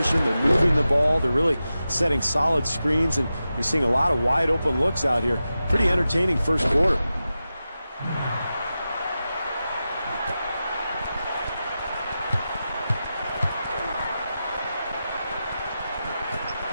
They're moving the ball. They're really setting solid screens, and you're seeing a lot of wide open looks out here. Pretty entertaining first quarter.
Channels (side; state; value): both; inverted; correlation -0.92